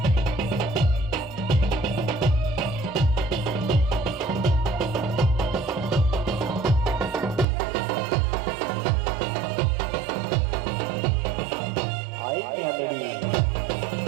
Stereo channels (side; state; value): left; drops out; at 7.5 s